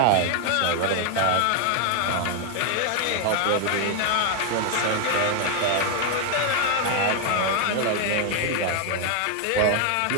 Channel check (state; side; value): different; both; correlation 0.01